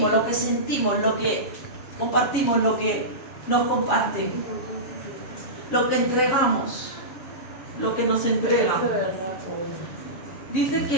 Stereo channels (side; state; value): right; late; 7.2 ms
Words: lo que sentimos, lo que compartimos, lo que nos comparten, lo que entregamos, lo que nos entregan. Dice